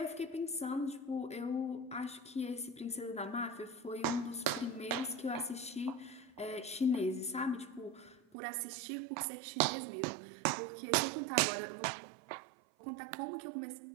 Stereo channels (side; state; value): left; drops out; at 8.2 s